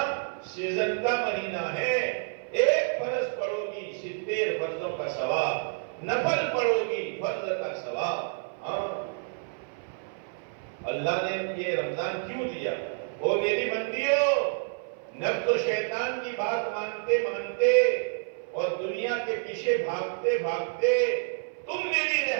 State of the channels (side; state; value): left; silent; 55 dB below the other